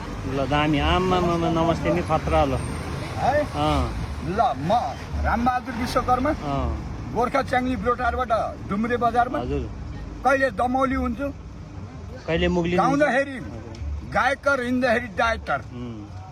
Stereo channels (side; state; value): both; identical; correlation 1.00